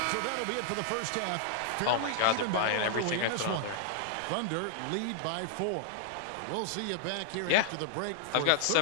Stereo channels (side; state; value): both; different; correlation -0.01